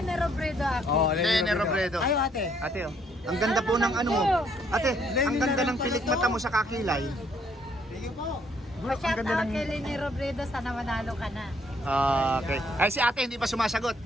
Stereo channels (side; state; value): both; normal; correlation 0.67